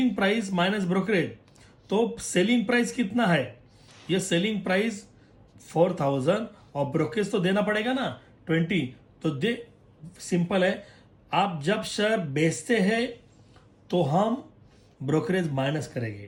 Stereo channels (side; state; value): both; identical; correlation 1.00